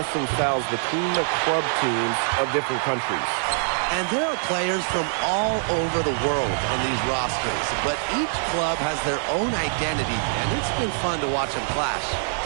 styles between the club teams of different countries. And there are players from all over the world on these rosters, but each club has their own identity, and it's been fun to watch them clash.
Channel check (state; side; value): silent; left; digital silence